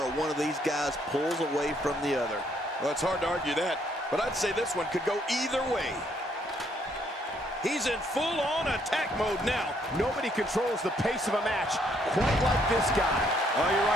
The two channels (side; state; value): both; normal; correlation 0.69